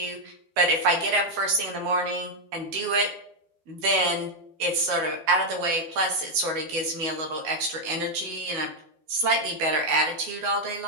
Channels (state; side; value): late; left; 12 ms